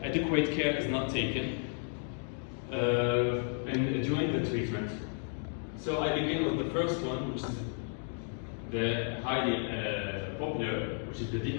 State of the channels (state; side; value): silent; right; 56 dB below the other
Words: adequate care is not taken and during the treatment. So I begin with the first one, which is the highly popular, which is the